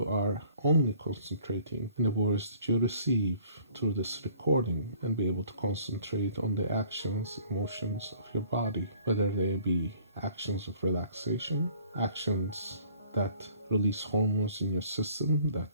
are only concentrating on the words that you receive through this recording, and be able to concentrate on the actions, emotions of your body, whether they be actions of relaxation, actions that release hormones in your system that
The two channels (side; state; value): both; inverted; correlation -0.55